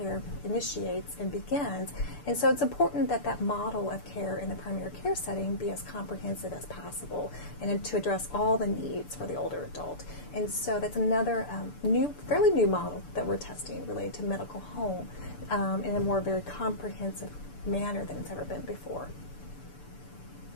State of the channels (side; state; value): right; late; 6.8 ms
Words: initiates and begins. And so it's important that that model of care in the primary care setting be as comprehensive as possible and to address all the needs for the older adult. And so that's another fairly new model that we're testing related to medical home in a more very comprehensive manner than it's ever been before.